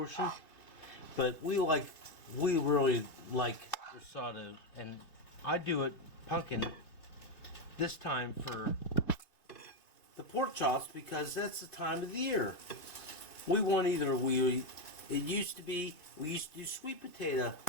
but we really like risotto, and I do it pumpkin this time for the pork chops because that's the time of the year. We used to do sweet potato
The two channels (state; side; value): late; right; 2.6 ms